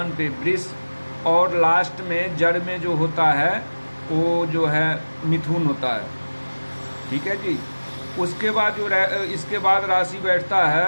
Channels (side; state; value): both; inverted; correlation -1.00